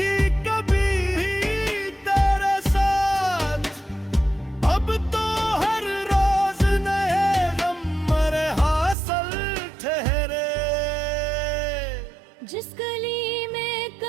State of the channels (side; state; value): left; drops out; at 9.0 s